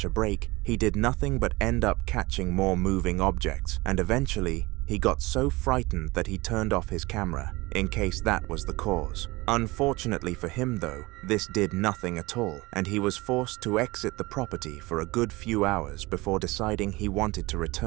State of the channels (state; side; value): quieter; left; 22.3 dB